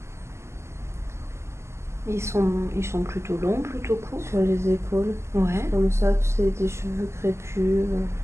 Ils sont plutôt longs, plutôt courts? Sur les épaules. Ouais. Comme ça, tu sais, des cheveux crépus.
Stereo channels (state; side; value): late; left; 0.13 ms